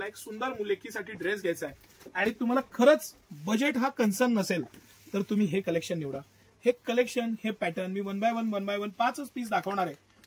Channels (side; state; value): both; identical; correlation 1.00